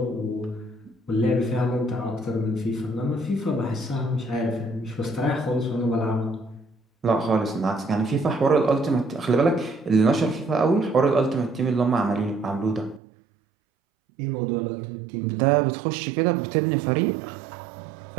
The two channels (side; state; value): left; drops out; at 13.0 s